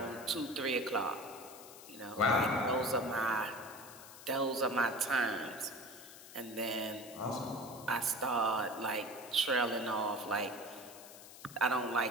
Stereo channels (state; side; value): noise; left; hiss, 16 dB below the sound